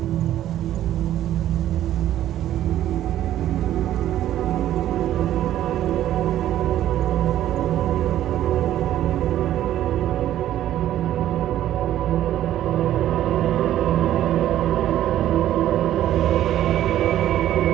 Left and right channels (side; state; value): left; quieter; 12.4 dB